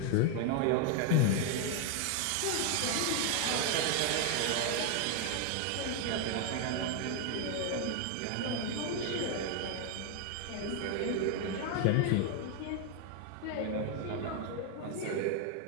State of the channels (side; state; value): both; different; correlation 0.01